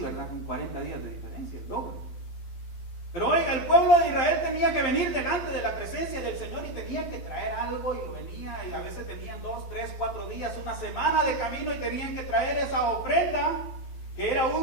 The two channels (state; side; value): late; right; 12 ms